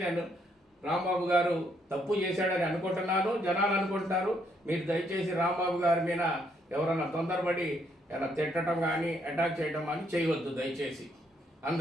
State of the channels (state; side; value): normal; both; correlation 0.73